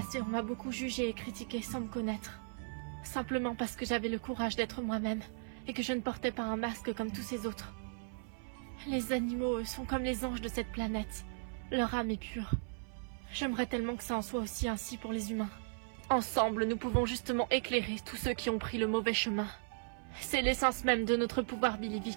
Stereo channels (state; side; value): silent; left; 53 dB below the other